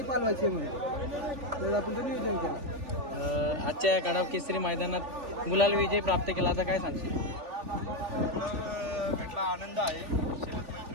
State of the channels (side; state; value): left; late; 3.4 ms